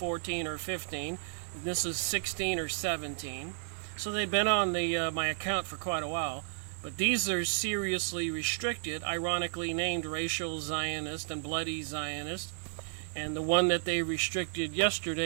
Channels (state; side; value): silent; left; 56 dB below the other